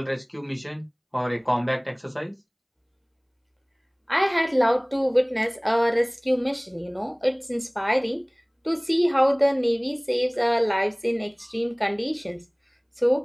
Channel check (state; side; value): identical; both; correlation 1.00